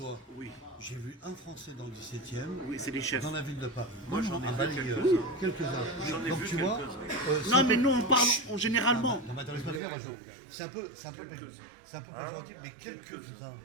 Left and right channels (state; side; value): drops out; left; at 9.8 s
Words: Oui. J'ai vu un Français dans le 17e, Oui, c'est des chefs. dans la ville de Paris. Moi, j'en ai balayeur. Quelques-uns. Donc, tu vois. Non, mais nous, on parle généralement. Non, mais attends, laisse-moi dire, Jean. C'est un peu péjoratif, mais quelques-uns.